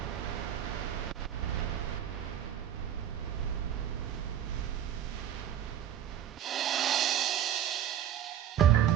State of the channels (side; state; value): left; quieter; 10.4 dB